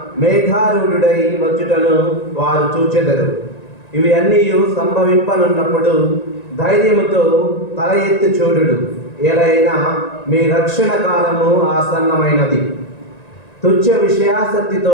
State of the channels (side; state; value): right; late; 1.9 ms